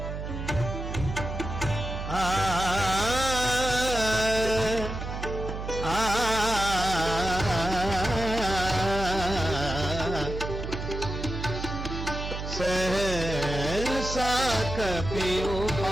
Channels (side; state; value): right; noise; hum, 6 dB below the sound